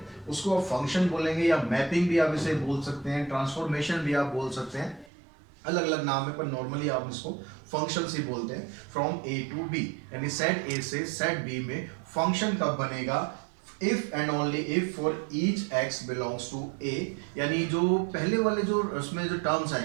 उसको आप फंक्शन बोलेंगे, या मैपिंग भी आप इसे बोल सकते हैं, ट्रांसफॉर्मेशन भी आप बोल सकते हैं, अलग अलग नाम है, पर नॉर्मली आप इसको फंक्शंस ही बोलते हैं। फ्रॉम ए टू बी, यानी सेट ए से सेट बी में फंक्शन कब बनेगा? If and only if for each x belongs to A, यानी जो पहले वाले जो उसमें जो टर्म्स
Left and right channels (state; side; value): drops out; left; at 5.1 s